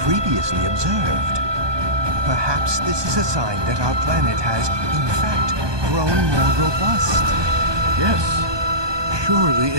observed. Perhaps this is a sign that our planet has, in fact, grown more robust. Yes, surely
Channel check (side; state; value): left; late; 1.2 ms